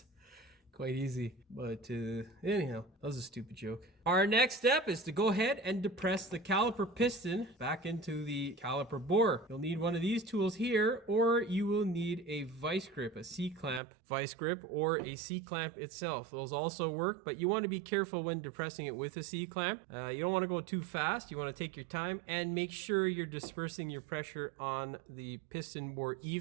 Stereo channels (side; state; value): left; drops out; at 13.8 s